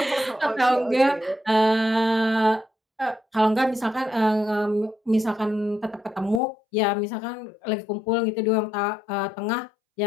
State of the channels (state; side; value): drops out; right; at 6.4 s